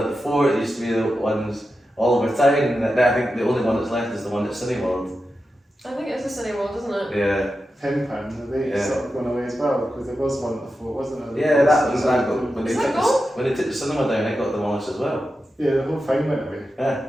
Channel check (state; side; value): normal; both; correlation 0.90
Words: the fort, it used to be the ones all over town, and I think the only one that's left is the one at Cineworld. I think it's a Cineworld, isn't it? Yeah. Tin pin, they Yeah. sort of gone away as well because there was one at the fort, wasn't there? Yeah, that was that got when they Is that took gone? when they took the cinema down, I got demolished as well. Yeah, the whole thing went away.